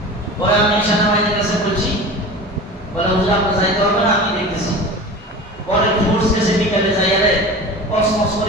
পরে আমি সেনাবাহিনীর কাছে বলছি, বলে হুজুর আপনি যাইতে হবে না, আমি দেখতেছি। পরে ফোর্স কেসে বিকালে যাইয়া রে কসমস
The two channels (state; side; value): normal; both; correlation 0.34